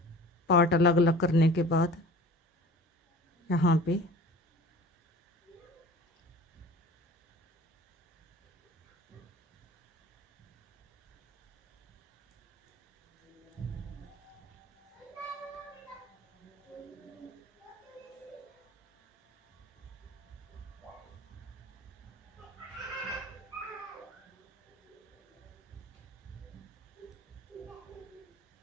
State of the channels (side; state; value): both; normal; correlation 0.42